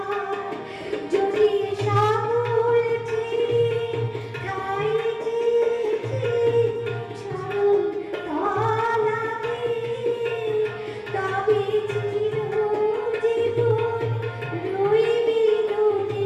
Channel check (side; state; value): both; identical; correlation 1.00